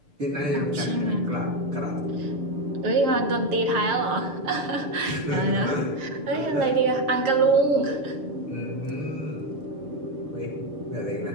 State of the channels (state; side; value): late; left; 6.8 ms